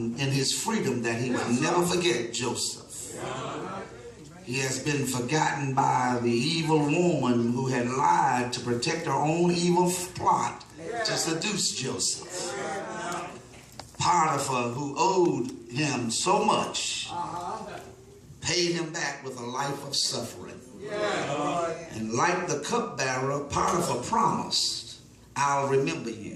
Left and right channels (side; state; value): both; identical; correlation 1.00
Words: in his freedom that he would never forget Joseph. He has been forgotten by the evil woman who had lied to protect her own evil plot to seduce Joseph. Potiphar, who owed him so much, paid him back with a life of suffering. And like the cupbearer, Potiphar promised, I'll remember